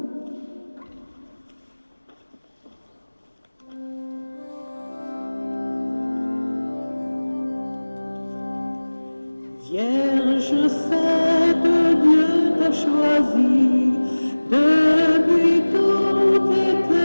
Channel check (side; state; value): both; inverted; correlation -1.00